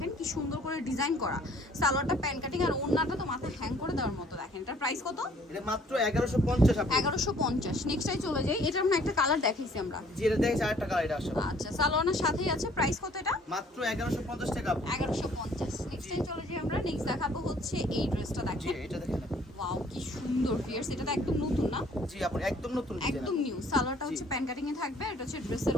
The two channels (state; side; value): normal; both; correlation 0.58